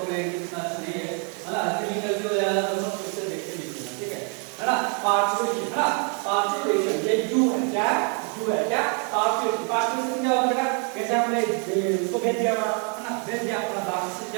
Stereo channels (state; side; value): quieter; left; 39.1 dB